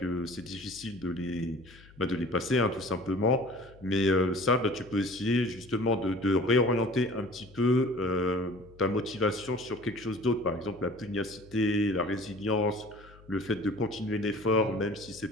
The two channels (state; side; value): noise; left; hum, 23 dB below the sound